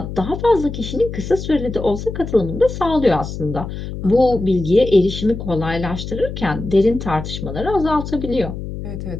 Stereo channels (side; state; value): left; noise; hum, 8 dB below the sound